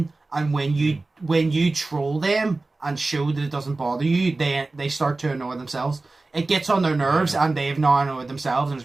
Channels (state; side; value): quieter; left; 3.3 dB